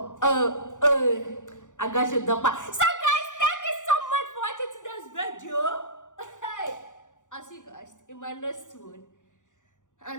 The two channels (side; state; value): right; late; 0.86 ms